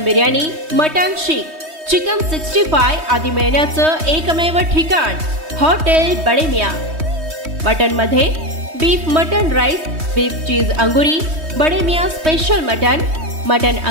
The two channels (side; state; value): left; late; 3.2 ms